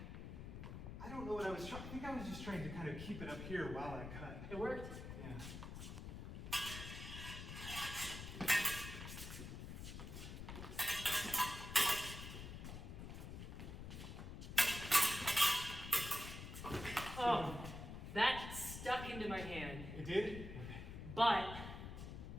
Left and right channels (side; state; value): left; noise; rumble, 8 dB below the sound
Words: don't know what I was trying. I think I was just trying to kind of keep it up here while I cut. It worked. Yeah. Oh, that stuck into my hand. It did? But